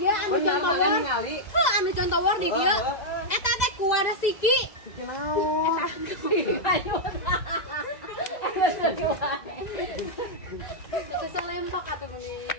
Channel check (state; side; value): late; right; 2.0 ms